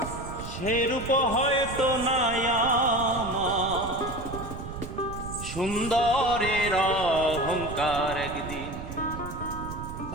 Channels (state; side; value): noise; right; rumble, 9 dB below the sound